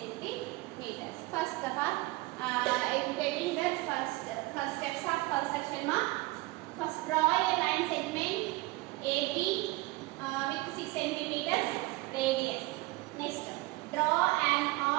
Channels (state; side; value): quieter; left; 21.4 dB